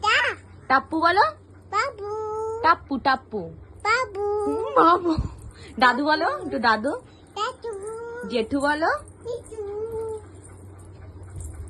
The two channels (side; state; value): both; identical; correlation 1.00